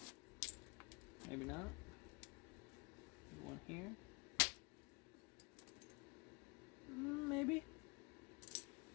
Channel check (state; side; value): quieter; right; 29.0 dB